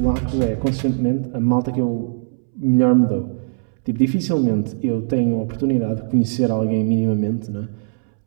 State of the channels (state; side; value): silent; left; 66 dB below the other